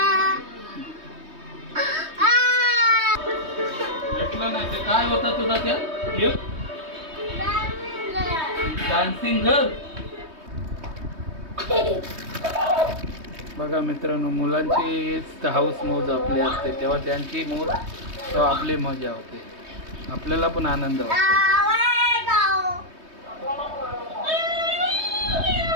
भेटलं नाही ते काय होता तुझा त्या गिफ्ट? Dancing girl. बघा मित्रांनो, मुलांची हाऊस मौज आपली असते तेव्हा त्यांची मौज तेव्हा आपली मजा होते, आपल्याला पण आनंद वाटतो.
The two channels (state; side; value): late; left; 3.2 ms